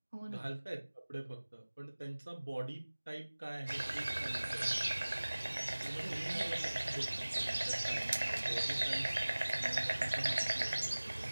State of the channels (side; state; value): both; inverted; correlation -1.00